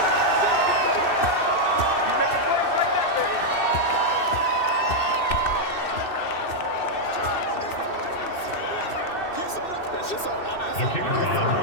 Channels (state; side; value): late; right; 2.6 ms